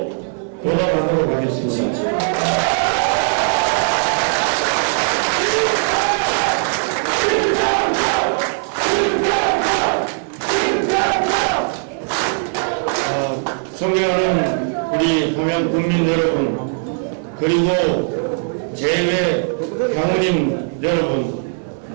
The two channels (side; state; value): left; silent; 67 dB below the other